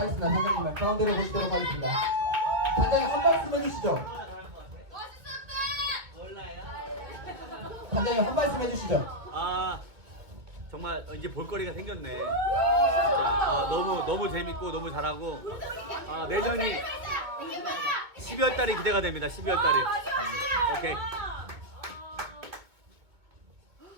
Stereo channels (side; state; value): left; late; 2.3 ms